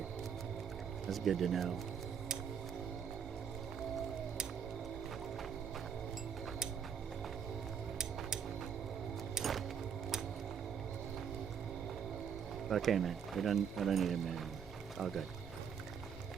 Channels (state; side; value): quieter; left; 7.5 dB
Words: That's good to know. Okay, man. I don't need him anymore. It's all good.